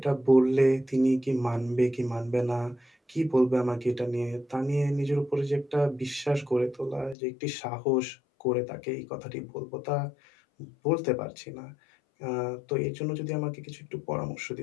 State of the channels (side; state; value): right; drops out; at 7.2 s